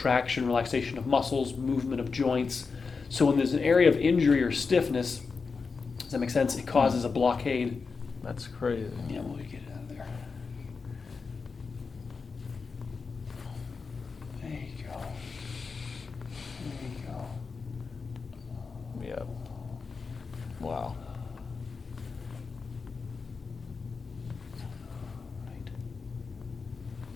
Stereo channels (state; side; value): quieter; right; 4.8 dB